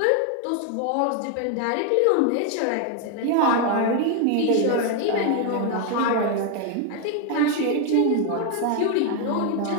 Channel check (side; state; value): both; different; correlation 0.01